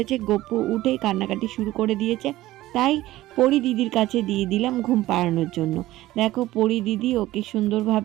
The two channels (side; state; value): left; quieter; 16.3 dB